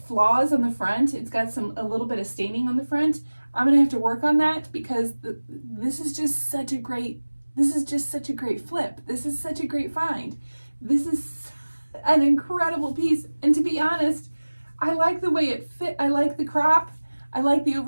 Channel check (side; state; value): both; inverted; correlation -1.00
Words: flaws on the front. It's got a little bit of staining on the front. I'm gonna have to work on that because this is just such a great flip. This is such a great find. This is an incredible piece. And to be honest, I like the way it fit. I like the crop. I like the